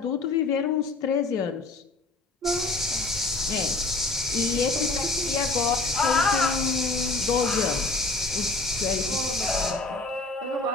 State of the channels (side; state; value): right; quieter; 3.4 dB